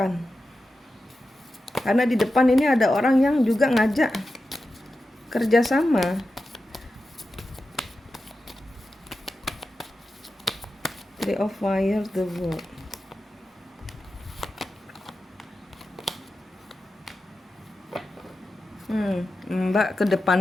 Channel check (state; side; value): normal; both; correlation 0.91